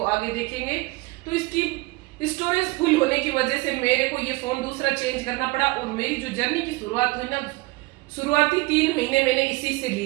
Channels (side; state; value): left; quieter; 23.5 dB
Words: आगे देखेंगे। तो इसकी स्टोरेज फुल होने की वजह से मेरे को ये फोन दूसरा चेंज करना पड़ा, और मेरी जो जर्नी की शुरुआत हुई ना, शुरुआती 3 महीने मैंने इसी से